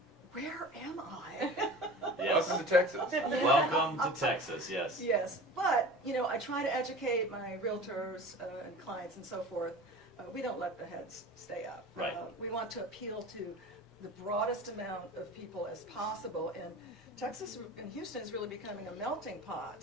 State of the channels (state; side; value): normal; both; correlation 0.37